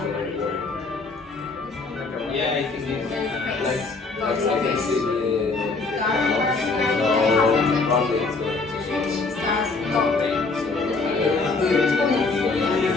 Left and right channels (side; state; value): right; quieter; 3.9 dB